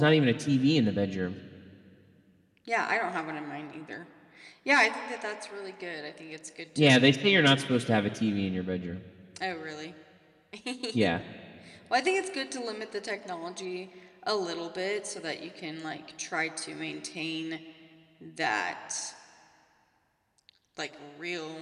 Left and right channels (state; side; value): identical; both; correlation 1.00